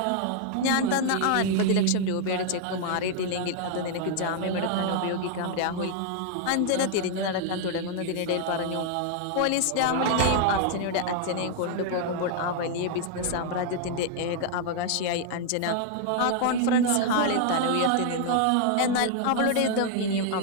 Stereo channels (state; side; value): different; both; correlation 0.00